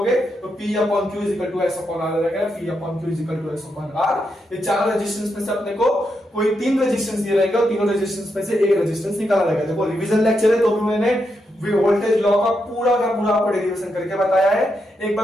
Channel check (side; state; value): both; normal; correlation 0.83